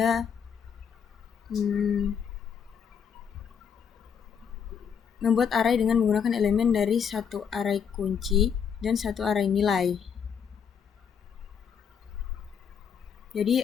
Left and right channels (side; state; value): right; quieter; 7.3 dB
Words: membuat array dengan menggunakan elemen dari satu array kunci dan satu array nilai. Jadi